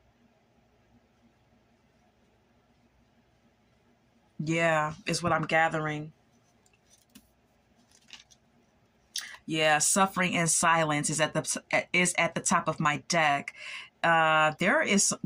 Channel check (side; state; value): both; identical; correlation 1.00